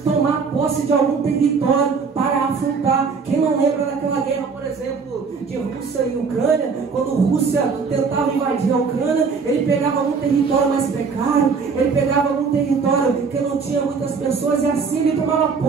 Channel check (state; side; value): quieter; left; 5.2 dB